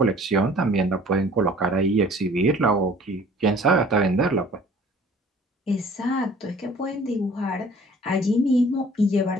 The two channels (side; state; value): both; normal; correlation 0.51